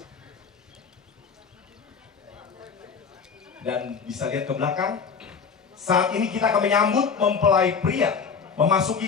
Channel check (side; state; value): right; quieter; 5.9 dB